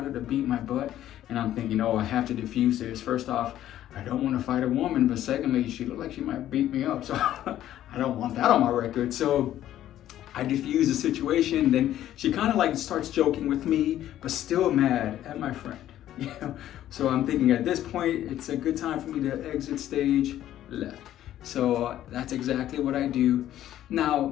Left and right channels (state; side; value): quieter; right; 12.4 dB